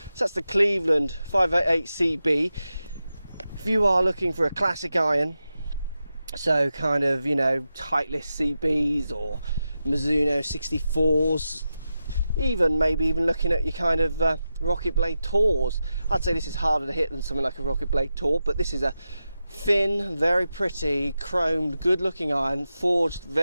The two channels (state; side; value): inverted; both; correlation -0.91